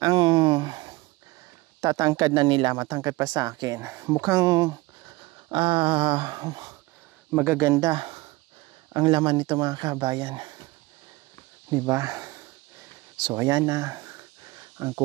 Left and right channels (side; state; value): left; quieter; 21.5 dB